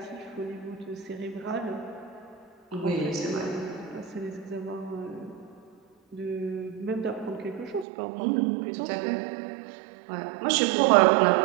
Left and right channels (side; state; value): left; drops out; at 7.9 s